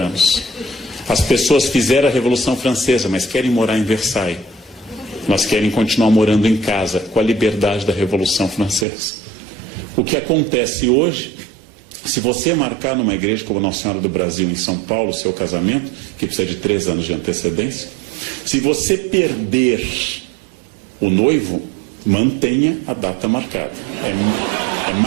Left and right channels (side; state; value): left; drops out; at 8.8 s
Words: As pessoas fizeram a Revolução Francesa, mas querem morar em Versailles. Elas querem continuar morando em casa, com a liberdade da Revolução Francesa. O que acontece hoje, se você marcar numa igreja como Nossa Senhora do Brasil, em São Paulo, o seu casamento, que precisa de 3 anos de antecedência, se você perder o noivo, mantenha a data marcada. É